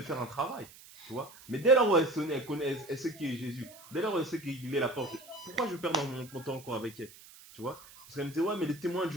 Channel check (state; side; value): noise; right; hiss, 20 dB below the sound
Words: faire un travail. Tu vois? Mais dès lors où elle connaît, elle sait qui est Jésus, dès lors où elle sait qu'il est la porte, pourquoi je perds mon temps encore avec elle? Tu vois? Parce qu'elle me disait, ouais, mais les témoins de